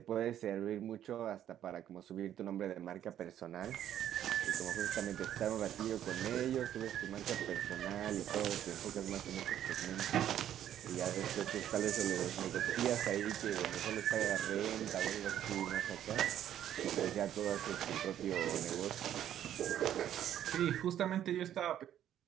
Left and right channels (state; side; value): quieter; left; 10.9 dB